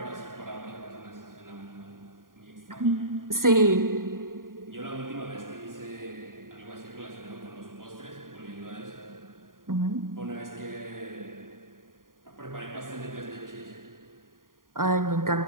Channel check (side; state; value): left; late; 0.91 ms